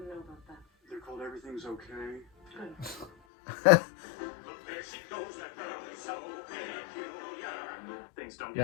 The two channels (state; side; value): drops out; right; at 3.1 s